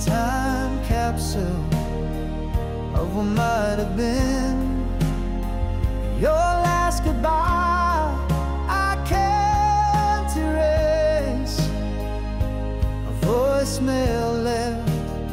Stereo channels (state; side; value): identical; both; correlation 1.00